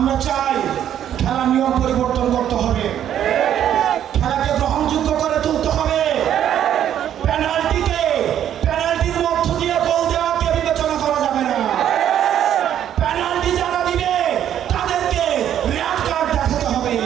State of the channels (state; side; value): quieter; left; 10.4 dB